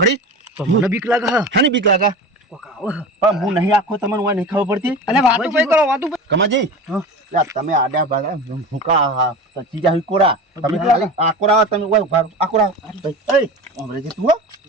તો મને બીક લાગે હા હાની બીક લાગા કોક આવો હા. પણ હું નહીં આખો તમને હું નહીં ખબર પડતી અને વાતું ભાઈ કરો વાતું ભાઈ કમાજી હા. લે તમે આડા બાડા ભૂકા હા તો ચીજા હી કોરા તમે ખાલી આ કોરા તમે ઓય ઉભા રહો. આ કોરા એ ઓમરેજી તું હો?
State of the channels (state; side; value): normal; both; correlation 0.31